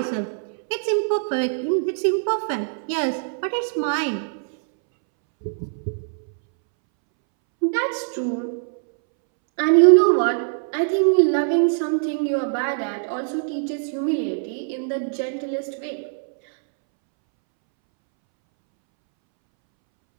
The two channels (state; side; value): silent; left; 64 dB below the other